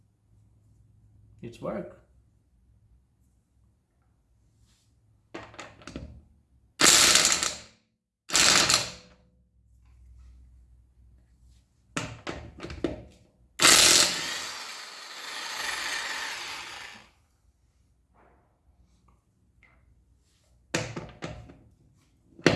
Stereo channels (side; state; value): both; identical; correlation 1.00